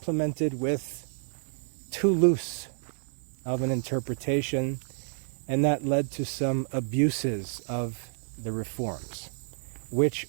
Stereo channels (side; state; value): left; silent; digital silence